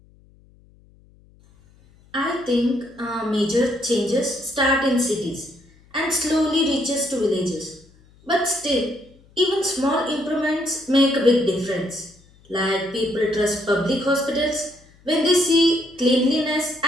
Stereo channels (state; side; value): noise; left; hum, 29 dB below the sound